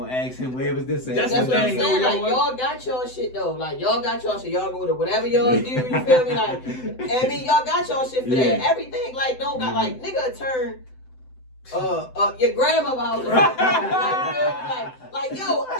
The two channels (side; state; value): right; late; 7.8 ms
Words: ask him, where was this at? That's what I'm saying, like, y'all got y'all shit, though. Like, y'all got y'all shit. Y'all go to whatever y'all do, you feel me? Like, I mean, y'all got y'all shit for that. Everything, like, don't got, like, nigga turn... your grandma house. Like, yo,